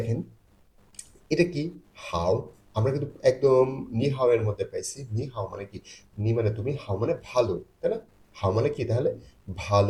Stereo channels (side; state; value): both; identical; correlation 1.00